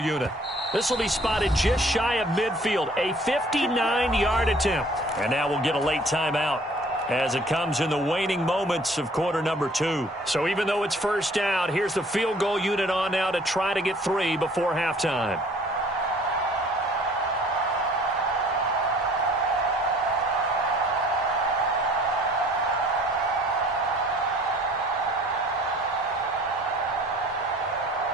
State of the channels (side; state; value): both; normal; correlation 0.54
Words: This will be spotted just shy of midfield, a 59-yard attempt. And now we'll get a late timeout as it comes in the waning moments of quarter number 2. So even though it's first down, here's the field goal unit on now to try to get 3 before halftime.